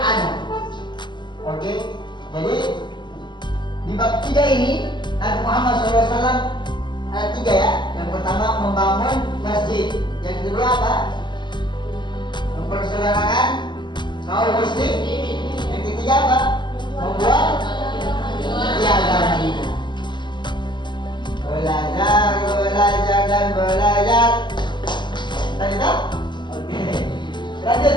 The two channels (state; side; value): late; right; 0.22 ms